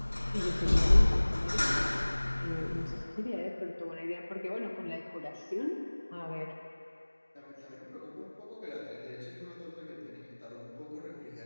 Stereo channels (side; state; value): both; inverted; correlation -1.00